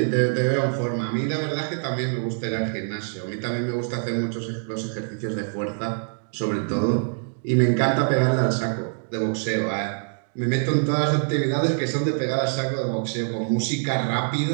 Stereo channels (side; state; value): left; silent; 62 dB below the other